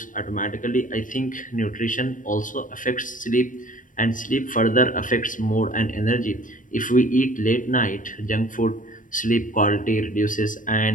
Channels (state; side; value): late; right; 0.38 ms